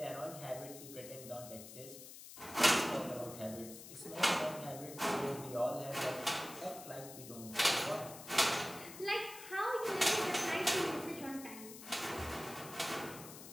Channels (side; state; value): left; noise; hiss, 14 dB below the sound